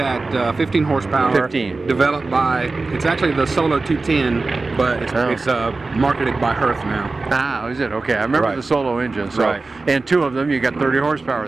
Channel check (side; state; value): left; quieter; 3.6 dB